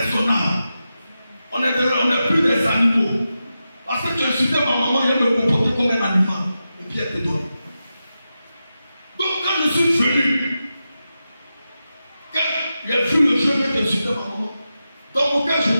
On n'est plus des animaux. Parce que tu insultais ma maman, elle me comportait comme un animal. Et puis elle te donne. Donc quand je suis venu, quand j'ai vu le jeu que insultait ma maman, dans mon cœur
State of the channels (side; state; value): both; inverted; correlation -0.91